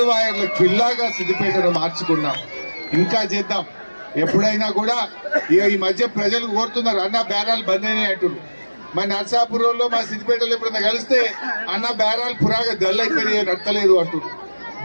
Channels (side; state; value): both; inverted; correlation -1.00